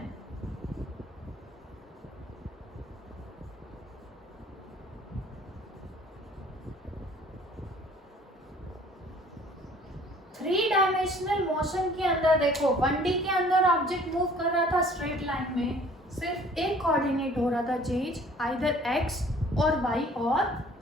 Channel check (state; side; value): normal; both; correlation 0.53